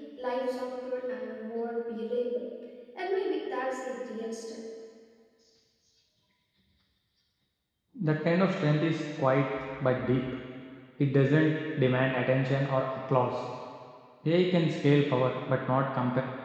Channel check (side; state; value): both; identical; correlation 1.00